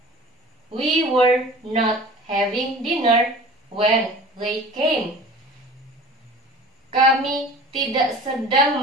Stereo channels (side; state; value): both; normal; correlation 0.42